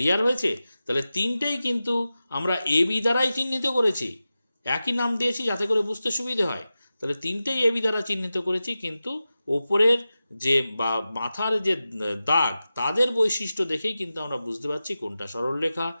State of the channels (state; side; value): inverted; both; correlation -0.94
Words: হয়েছে? তাহলে তিনটেই কিন্তু আমরা এবি দ্বারাই চিহ্নিত করেছি, একই নাম দিয়েছি যাতে করে বুঝতে সুবিধে হয়। তাহলে তিনটেই এবি দ্বারা চিহ্নিত করেছি, কিন্তু ওপরের যে বা মাথার যে দাগ তাদের বৈশিষ্ট্য দেখেই কিন্তু আমরা বুঝতে পারছি কোনটা সরলরেখা,